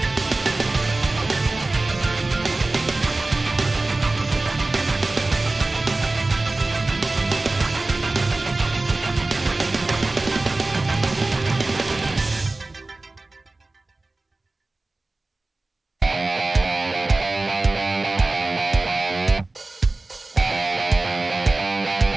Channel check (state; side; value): quieter; left; 3.1 dB